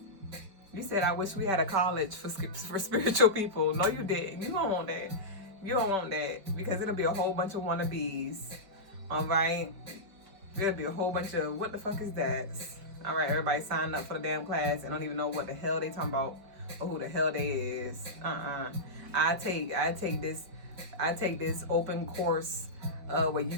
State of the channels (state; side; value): late; left; 5.1 ms